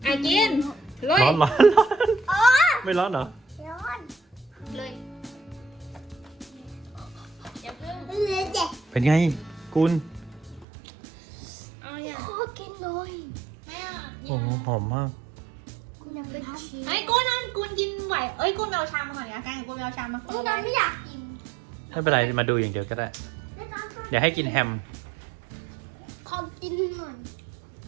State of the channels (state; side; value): drops out; left; at 10.7 s